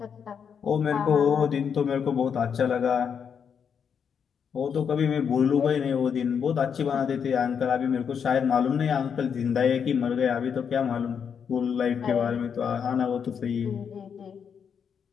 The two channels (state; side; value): quieter; right; 7.1 dB